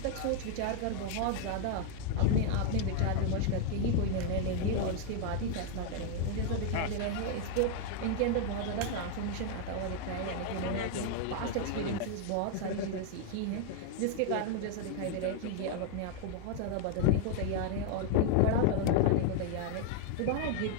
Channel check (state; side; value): different; both; correlation 0.00